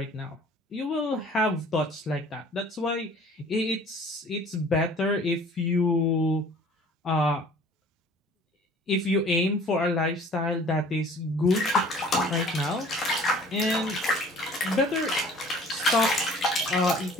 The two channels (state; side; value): normal; both; correlation 0.50